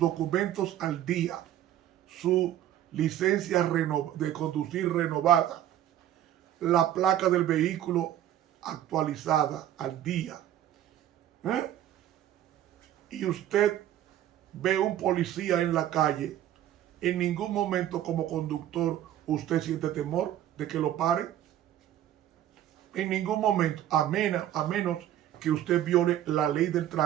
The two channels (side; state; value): left; quieter; 11.9 dB